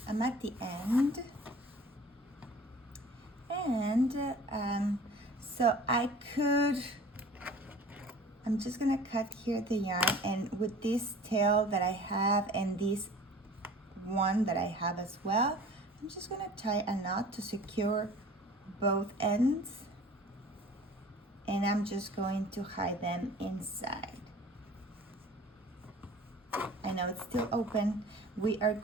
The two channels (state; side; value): normal; both; correlation 0.45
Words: at the end, and so I'm just gonna cut here the yarn, and with this tail that I have and this one that I have as well, I'm just gonna tie a knot to secure both ends, and I'm just going to hide them inside. I know it's still open. We are